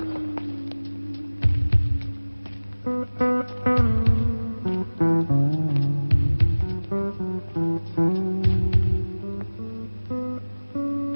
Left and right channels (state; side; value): inverted; both; correlation -1.00